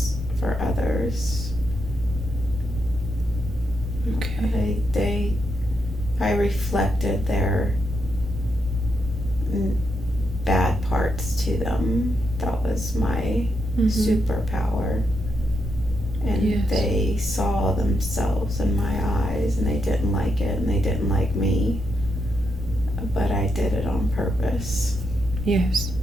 for others. Okay. I reflected their bad parts to them. That was my superpower. And yes. They saw themselves in my eyes and they didn't like it and they didn't like me. But I did it on purpose. Yes.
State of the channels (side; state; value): both; normal; correlation 0.82